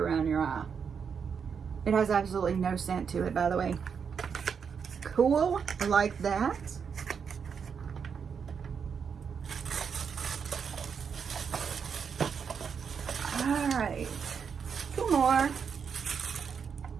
your eye. It has absolutely no scent to it, by the way. Cool, I like that. All right, 2 more.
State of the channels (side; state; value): left; quieter; 6.6 dB